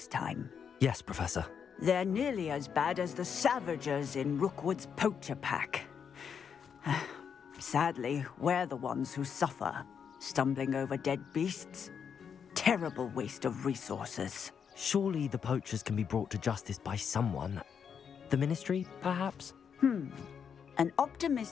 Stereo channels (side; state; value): right; quieter; 7.2 dB